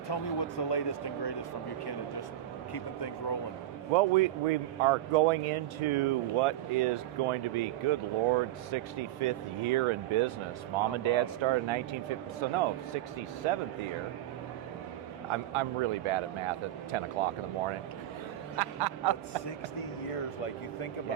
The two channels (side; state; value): left; quieter; 13.2 dB